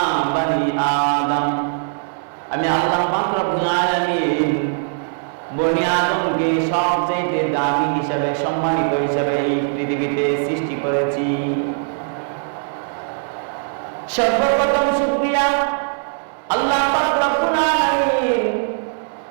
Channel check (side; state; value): left; silent; digital silence